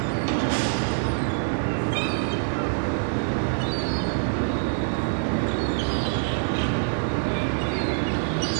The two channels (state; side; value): silent; left; digital silence